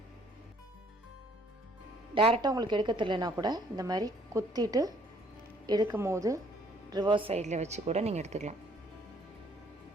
டேரெக்டாக உங்களுக்கு எடுக்க தெரியலனா கூட இந்த மாதிரி குத்திட்டு எடுக்கும் போது ரிவர்ஸ் சைடில் வச்சு கூட நீங்கள் எடுத்துக்கலாம்.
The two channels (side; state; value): both; normal; correlation 0.62